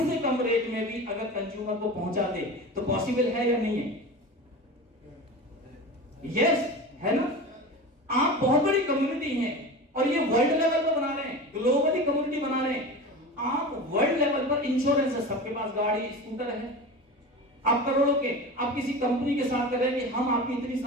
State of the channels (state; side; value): normal; both; correlation 0.30